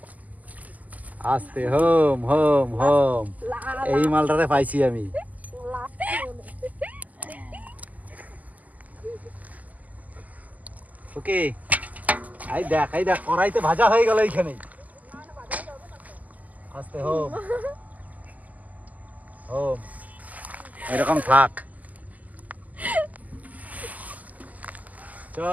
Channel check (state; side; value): late; left; 0.078 ms